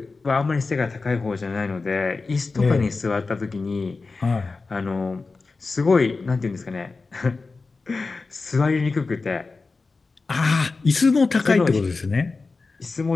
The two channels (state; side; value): quieter; right; 4.0 dB